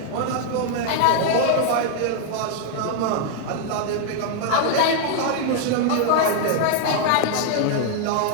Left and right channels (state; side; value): different; both; correlation 0.00